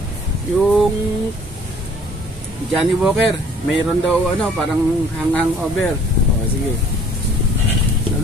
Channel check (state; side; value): normal; both; correlation 0.55